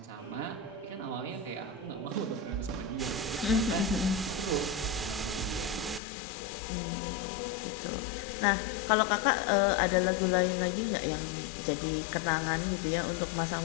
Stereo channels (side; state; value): right; drops out; at 6.0 s